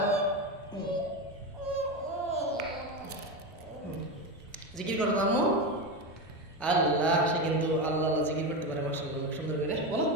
জিকির করো আম্মু। আল্লাহ, সে কিন্তু আল্লাহ আল্লাহ জিকির করতে পারে। মাশাআল্লাহ, সুন্দর করে বলো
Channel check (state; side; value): normal; both; correlation 0.17